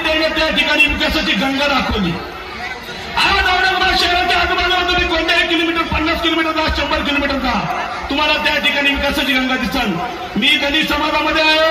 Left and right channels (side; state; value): both; identical; correlation 1.00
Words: त्याने त्या ठिकाणी विकासाची गंगा दाखवली। आज औरंगाबाद शहराच्या आजूबाजूला तुम्ही कोणत्याही किलोमीटर 50 किलोमीटर 100 किलोमीटर जा, तुम्हाला त्या ठिकाणी विकासाची गंगा दिसल। मी दलित समाजामध्ये